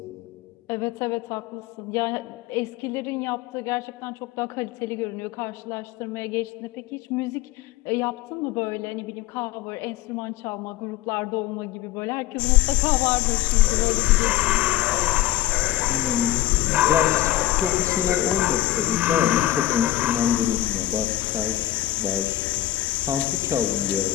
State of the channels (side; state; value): right; quieter; 14.0 dB